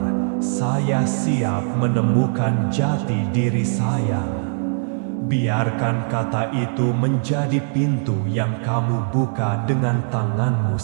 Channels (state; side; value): silent; left; digital silence